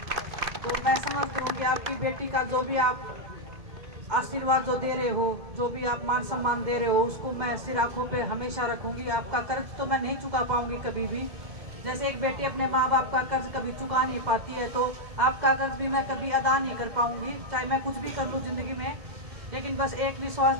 तो मैं समझती हूँ कि आपकी बेटी का जो भी आप आशीर्वाद जो दे रहे हो, जो भी आप मान सम्मान दे रहे हो, उसको मैं सिर आंखों पे हमेशा रखूंगी। आपका कर्ज तो मैं नहीं चुका पाऊंगी कभी भी। जैसे एक बेटी अपने माँ बाप का कर्ज कभी चुका नहीं पाती है, तो आपका कर्ज भी मैं कभी अदा नहीं कर पाऊंगी, चाहे मैं कुछ भी कर लूँ जिंदगी में। लेकिन बस एक विश्वास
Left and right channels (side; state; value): left; late; 2.1 ms